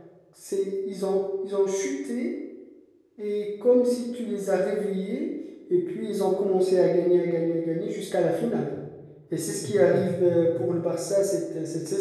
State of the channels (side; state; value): both; identical; correlation 1.00